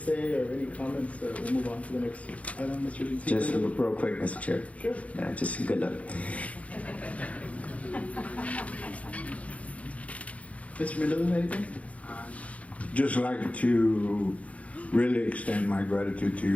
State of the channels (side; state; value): right; late; 0.066 ms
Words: or any comments, we'll move on to the next item, Mr. Zeke. Just real quick, Mr. Chair. Sure. Yeah, just good luck. Mr. Mendoza, anything? Just like to really extend my gratitude to